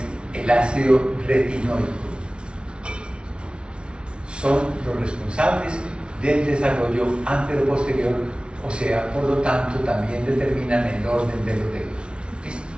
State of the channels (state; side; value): late; left; 0.057 ms